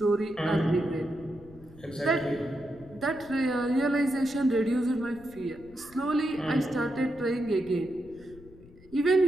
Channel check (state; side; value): noise; left; rumble, 22 dB below the sound